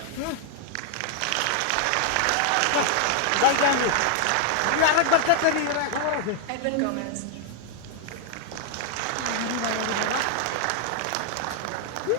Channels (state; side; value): different; both; correlation 0.00